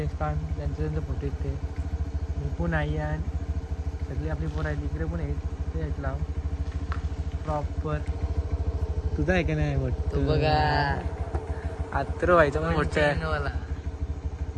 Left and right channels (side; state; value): both; identical; correlation 1.00